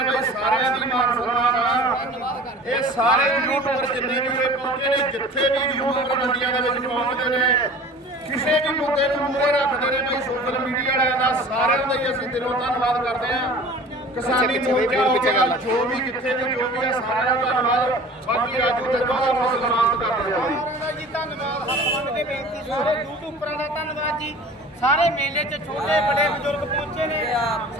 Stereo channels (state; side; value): normal; both; correlation 0.43